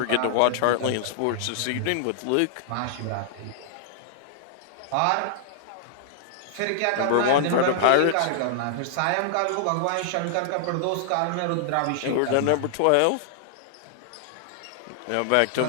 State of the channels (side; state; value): both; different; correlation -0.01